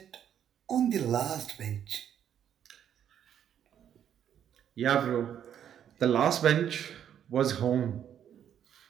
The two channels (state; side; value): quieter; left; 9.5 dB